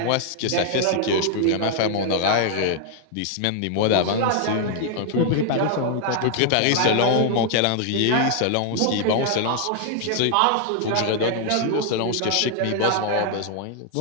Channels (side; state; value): both; different; correlation 0.00